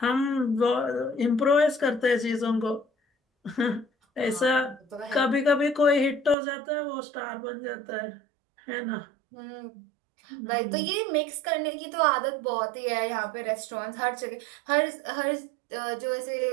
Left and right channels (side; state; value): left; drops out; at 6.4 s